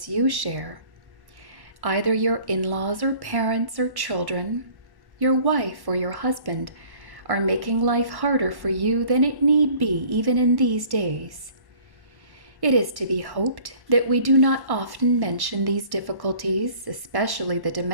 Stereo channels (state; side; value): late; left; 1.1 ms